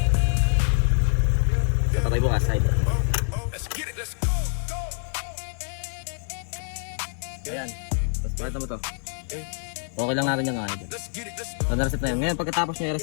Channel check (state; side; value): silent; right; digital silence